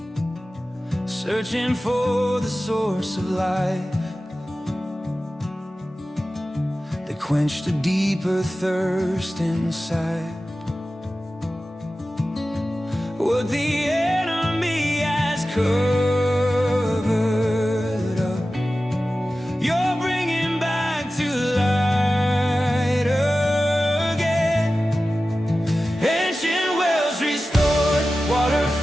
searching for the source of life that quenched a deeper thirst inside. What the enemy has covered up, you're bringing back to light again. Ancient wells restored, water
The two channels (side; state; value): both; normal; correlation 0.95